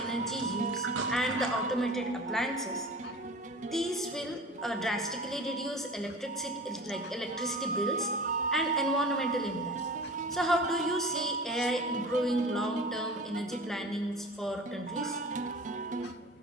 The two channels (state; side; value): normal; both; correlation 0.38